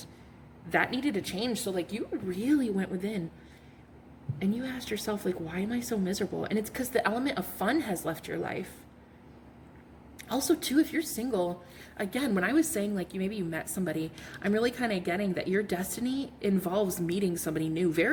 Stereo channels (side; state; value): both; identical; correlation 1.00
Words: that needed to change. So like, you really went within and you asked yourself, like, why am I so miserable? And it's because the element of fun has left your life. Also, too, if you're single, again, when I was saying, like, maybe you met somebody, I'm really kind of getting that your destiny involves meeting somebody new